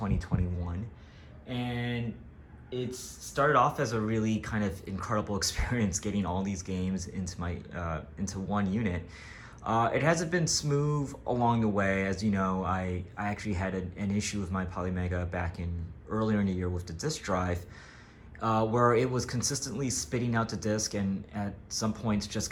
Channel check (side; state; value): both; identical; correlation 1.00